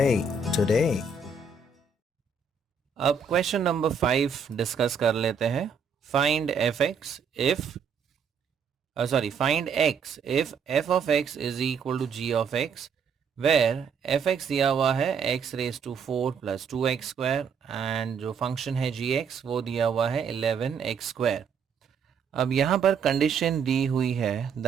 today. अब question number 5 discuss कर लेते हैं. Find find x if f of x is equal to g of x, where fx दिया हुआ है x raised to 4 plus 2x square and जो function है gx वो दिया हुआ है 11x square. अब यहाँ पर कंडीशन दी हुई है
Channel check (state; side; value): quieter; left; 5.7 dB